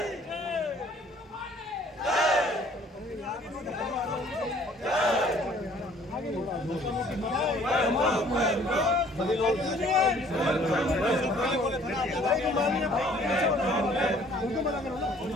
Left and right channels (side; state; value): both; normal; correlation 0.57